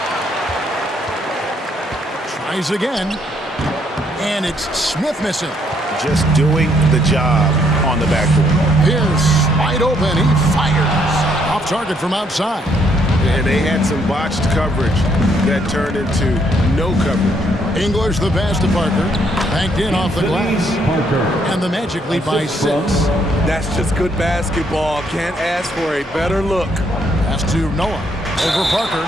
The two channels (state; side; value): normal; both; correlation 0.71